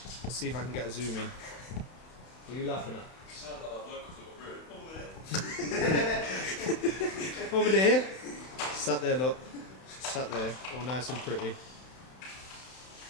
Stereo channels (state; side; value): late; right; 31 ms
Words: see if I can get a zoom in. What are you laughing at? You sound like that bloke who's got a room. Over there. Over there. Sat there, look. Sat there, all nice and pretty.